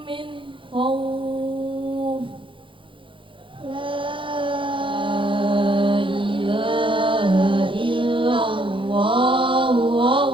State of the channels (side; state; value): left; late; 0.25 ms